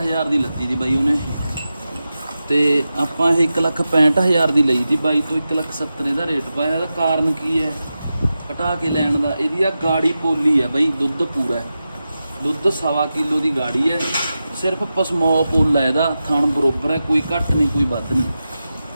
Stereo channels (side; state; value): both; inverted; correlation -0.92